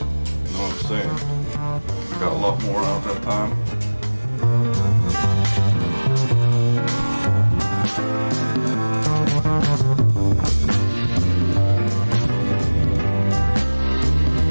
know what I'm saying? I got a lot more out that time.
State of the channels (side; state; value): both; inverted; correlation -1.00